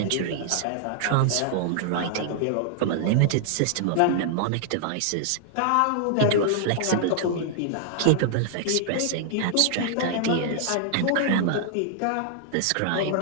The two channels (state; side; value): different; both; correlation -0.01